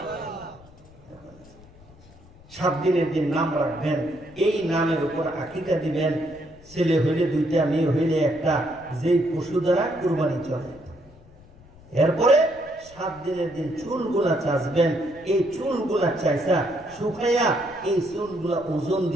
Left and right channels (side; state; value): left; noise; rumble, 24 dB below the sound